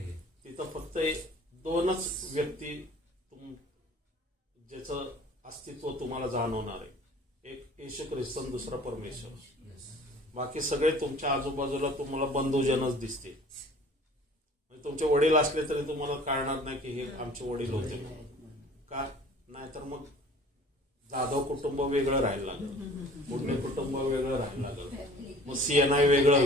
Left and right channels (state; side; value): normal; both; correlation 0.48